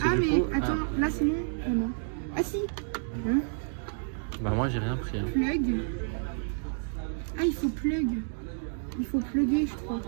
Ah, du mais coup, attends, là c'est non. Ah, non. Ah, si. Hein? Bah, moi, j'ai rien pris. Hein. Plug. Ah, il faut plug. Il faut plugger, je crois.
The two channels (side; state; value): left; silent; digital silence